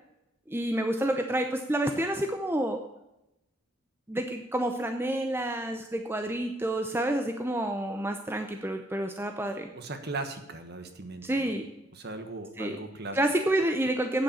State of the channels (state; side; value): normal; both; correlation 0.72